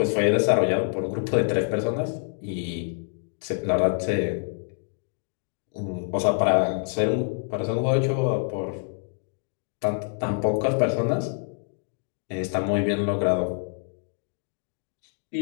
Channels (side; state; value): right; silent; digital silence